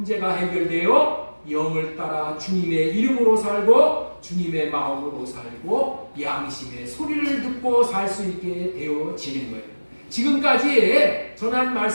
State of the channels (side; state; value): both; inverted; correlation -1.00